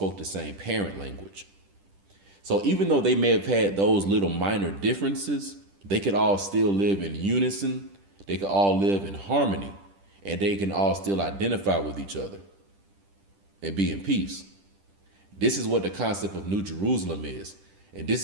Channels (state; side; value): late; left; 10 ms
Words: the same parent language. So even though they may have had those little minor differences, they could all still live in unison. They could all live in harmony, and they can all still identify with each other and be in peace. This is what the concept of New Jerusalem is. And this